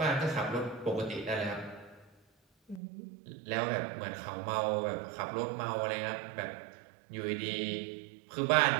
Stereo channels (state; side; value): drops out; left; at 2.8 s